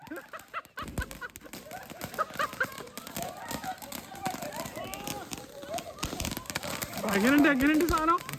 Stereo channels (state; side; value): identical; both; correlation 1.00